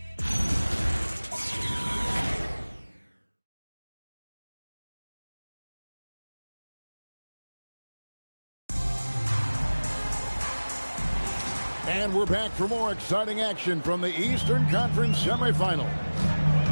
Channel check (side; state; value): both; inverted; correlation -1.00